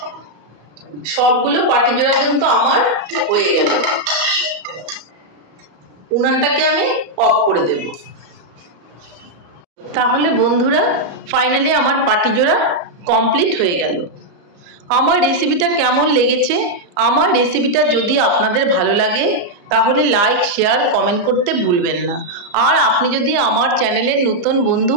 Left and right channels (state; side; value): late; left; 34 ms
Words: সবগুলো পাটিজোড়া কিন্তু আমার হয়ে গেল। উনানটাকে আমি অফ করে দেব। তাহলে বন্ধুরা ফাইনালি আমার পাটিজোড়া কমপ্লিট হয়ে গেল। আমার রেসিপিটা কেমন লেগেছে? আমার রেসিপিটা যদি আপনাদের ভালো লাগে তাহলে লাইক, শেয়ার, কমেন্ট করতে ভুলবেন না। আর আপনি যদি আমার চ্যানেলের নতুন বন্ধু